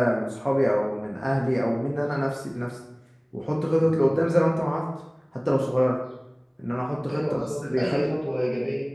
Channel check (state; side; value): identical; both; correlation 1.00